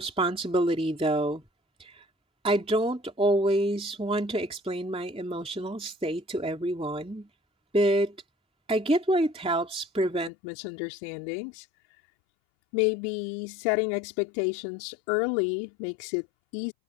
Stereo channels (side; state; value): right; drops out; at 10.3 s